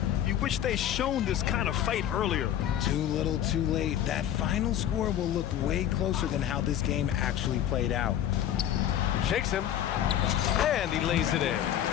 You wish they shown this kind of fight earlier. Too little, too late. That final score will look way closer than how this game actually played out. Shakes him. And he lays it in.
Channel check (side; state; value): right; quieter; 10.9 dB